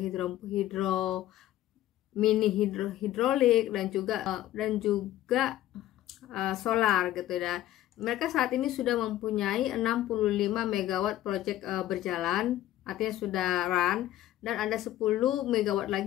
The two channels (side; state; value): right; quieter; 13.7 dB